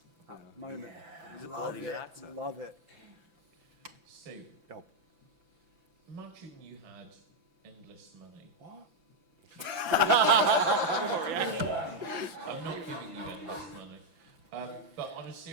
moment. He's a Love bloody good it. actor. Love it. Steve, Yo. imagine you had endless money. What? I'm not giving you endless money. But on a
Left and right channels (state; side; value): late; left; 5.9 ms